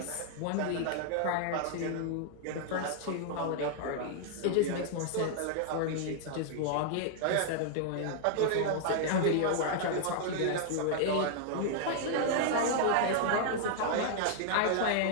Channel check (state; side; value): different; both; correlation -0.01